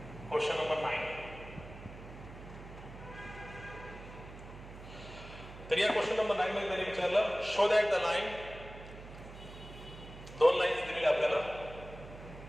Question number 9. तर या क्वेश्चन नंबर 9 मध्ये त्यांनी विचारलं show that the line, 2 lines दिलेली आपल्याला.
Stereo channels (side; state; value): right; noise; hum, 14 dB below the sound